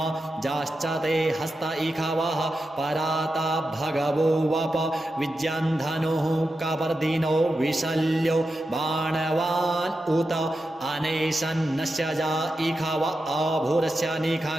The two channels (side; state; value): both; normal; correlation 0.90